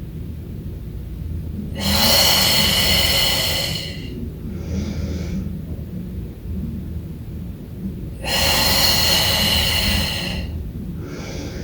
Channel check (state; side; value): identical; both; correlation 1.00